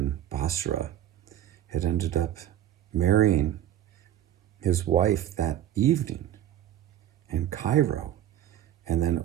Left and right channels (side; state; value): left; quieter; 11.5 dB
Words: Basra, had ended up marrying his wife that evening in Cairo, and then